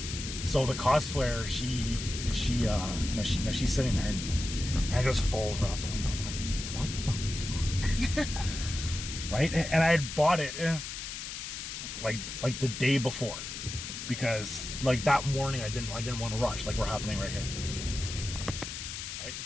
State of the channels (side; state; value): left; noise; hiss, 7 dB below the sound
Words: So the cosplayer, she's sitting there and it just falls right out the window. And I'm like, what the fuck? Right? And I had bought it like the day before, because like that morning I didn't want to rush like we're happening right here. Right?